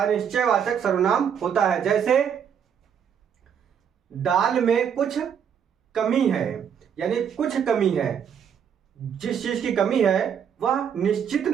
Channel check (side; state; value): left; quieter; 8.0 dB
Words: सर्वनाम होता है। जैसे दाल में कुछ कमी है, यानी कुछ कमी है, जिस चीज की कमी है वह निश्चित